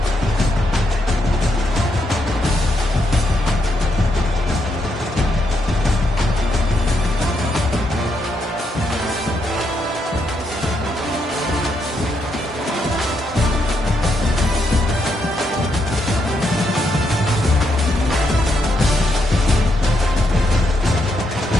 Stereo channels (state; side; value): normal; both; correlation 0.79